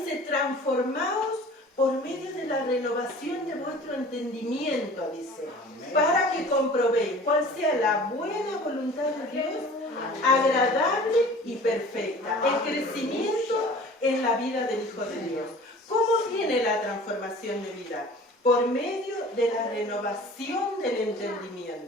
transformaos por medio de la renovación de vuestro entendimiento, dice, para que comprobéis cuál sea la buena voluntad de Dios, agradable y perfecta. El crecimiento en la vida del Hijo de Dios. ¿Cómo viene la transformación de vida? Por medio de la renovación del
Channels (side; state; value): both; normal; correlation 0.44